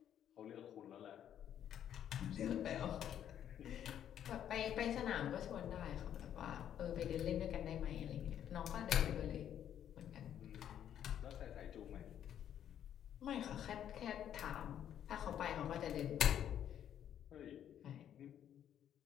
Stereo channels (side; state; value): right; quieter; 10.0 dB